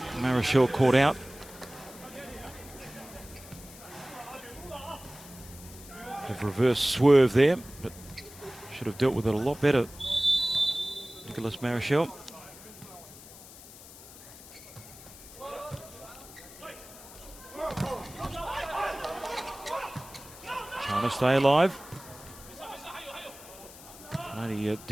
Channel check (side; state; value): left; noise; hiss, 17 dB below the sound